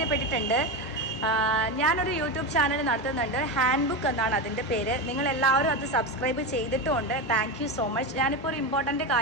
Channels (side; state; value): both; normal; correlation 0.17